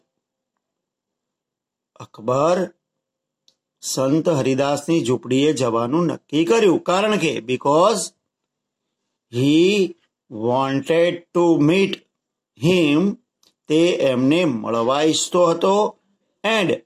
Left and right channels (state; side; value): identical; both; correlation 1.00